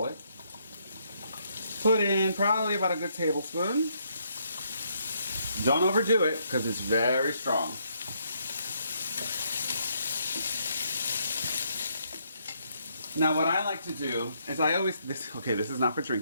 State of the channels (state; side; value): inverted; both; correlation -0.73